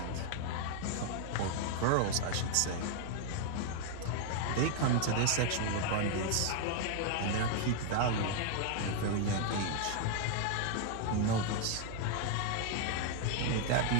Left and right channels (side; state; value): both; different; correlation 0.00